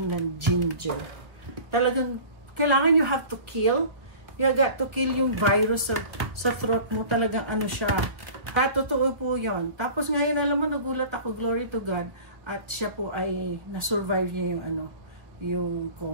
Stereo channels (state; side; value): late; left; 1.0 ms